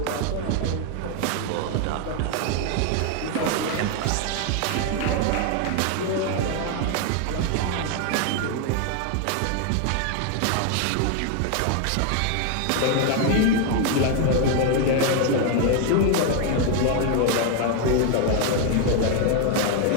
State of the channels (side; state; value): both; different; correlation 0.01